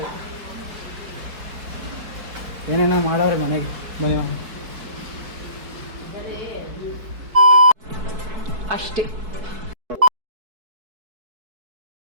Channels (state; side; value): late; left; 4.6 ms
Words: ಏನೇನೋ ಮಾಡೋರೆ ಮನೆಗೆ. ಬನ್ನಿ ಅಷ್ಟೇ.